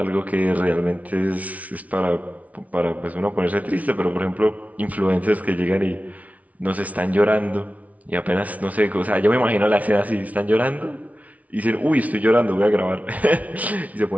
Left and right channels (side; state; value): left; late; 0.069 ms